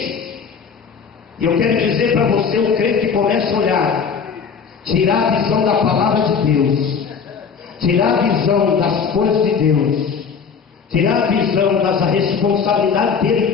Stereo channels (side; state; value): right; quieter; 6.2 dB